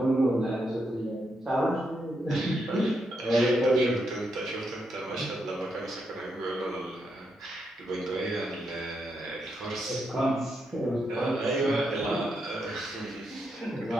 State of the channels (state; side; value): normal; both; correlation 0.81